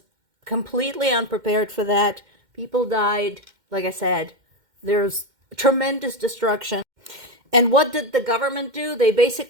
completely unprepared for that. People died. Like I said, there's tremendous destruction. And what did the government do?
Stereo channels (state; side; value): late; left; 2.1 ms